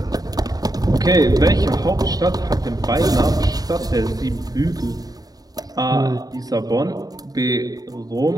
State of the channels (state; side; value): late; left; 0.18 ms